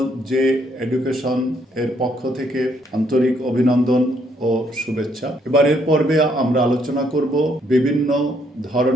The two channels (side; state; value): both; normal; correlation 0.70